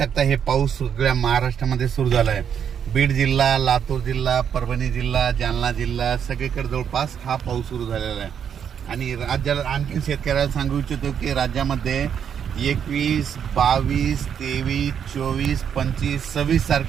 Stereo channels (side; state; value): left; quieter; 8.1 dB